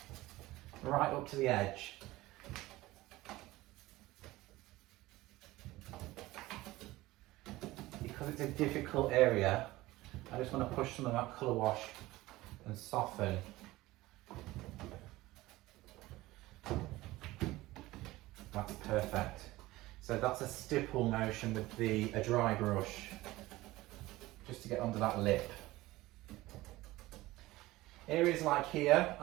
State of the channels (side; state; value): left; quieter; 18.4 dB